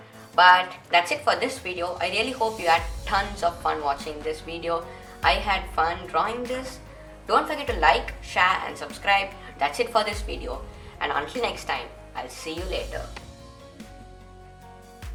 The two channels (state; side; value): identical; both; correlation 1.00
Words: But that's it for this video. I really hope you had tons of fun watching this video. I had fun drawing this. Don't forget to like, share and subscribe. That's it for this video. And until next time, I'll see you later.